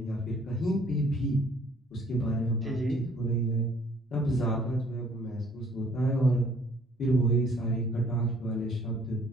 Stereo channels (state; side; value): normal; both; correlation 0.59